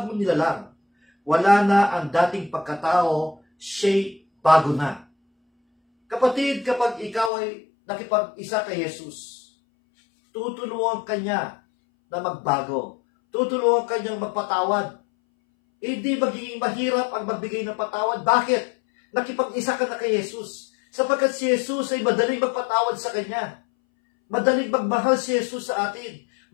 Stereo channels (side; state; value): right; drops out; at 7.3 s